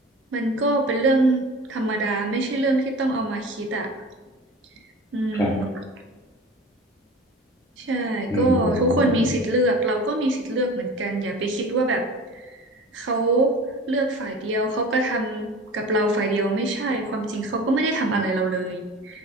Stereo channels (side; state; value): both; normal; correlation 0.38